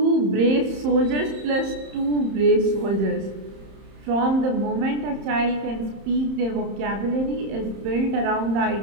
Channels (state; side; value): late; left; 31 ms